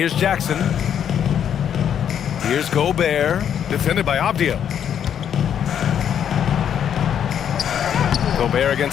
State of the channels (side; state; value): right; quieter; 8.9 dB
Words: Jackson. Here's Gobert, defended by Avdia. Gobert